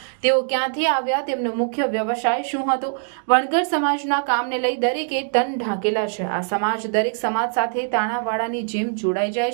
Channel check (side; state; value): left; silent; digital silence